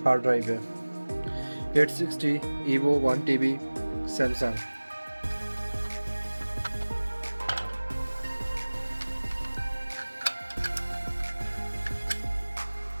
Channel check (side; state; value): both; inverted; correlation -1.00